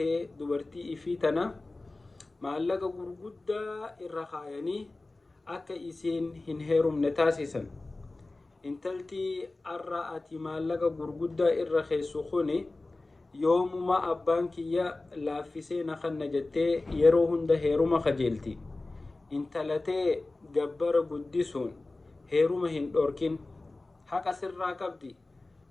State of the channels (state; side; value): quieter; right; 3.1 dB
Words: dubartii ifii tana maallaqa gurguddaa irra kaayanii akka isiin hin heerumne taasisan. Intaltii arra ati maallaqa gurguddaa irra keessu kuni yoomuma abbaan kiyya laaffisee na kanna jettee yeroo hunda heeruma kajeelti. Intalatee gabbara guddisuun heeruma hin dhorkin haqa sirraa qabdi.